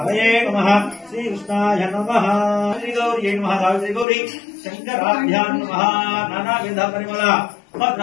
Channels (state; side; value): drops out; right; at 4.0 s